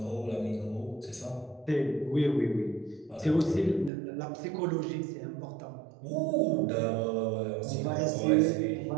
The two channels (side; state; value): left; drops out; at 3.9 s